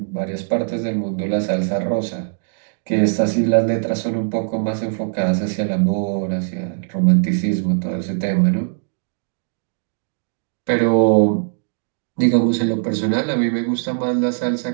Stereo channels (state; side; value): silent; left; digital silence